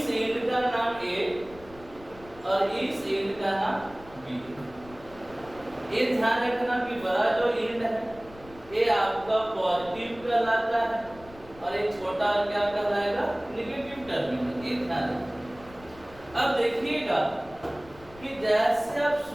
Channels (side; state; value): left; noise; rumble, 21 dB below the sound